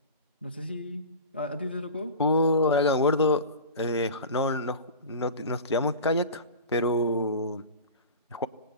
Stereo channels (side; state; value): both; inverted; correlation -0.33